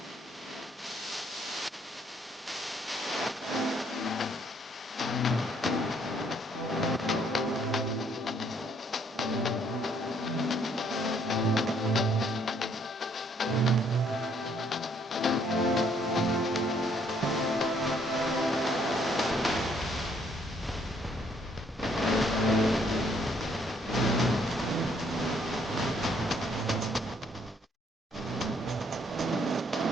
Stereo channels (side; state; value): both; normal; correlation 0.67